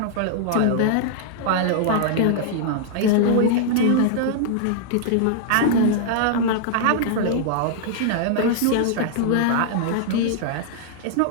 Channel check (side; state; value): both; different; correlation -0.01